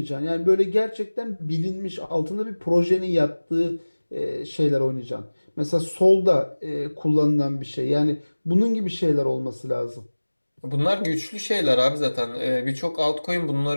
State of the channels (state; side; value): inverted; both; correlation -1.00